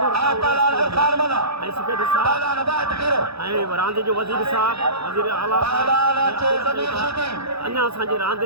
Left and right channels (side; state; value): left; late; 0.78 ms